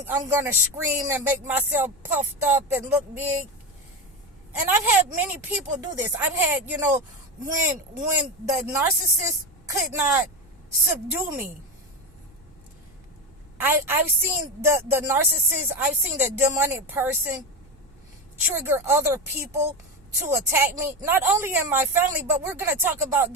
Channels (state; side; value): normal; both; correlation 0.18